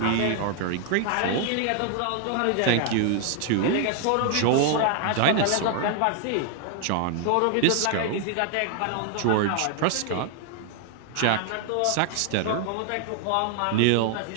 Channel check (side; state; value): both; different; correlation 0.00